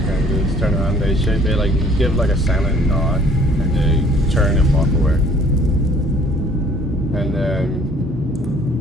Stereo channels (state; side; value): normal; both; correlation 0.57